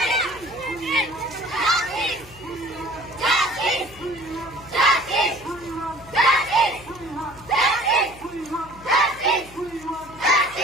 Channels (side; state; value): left; noise; hum, 21 dB below the sound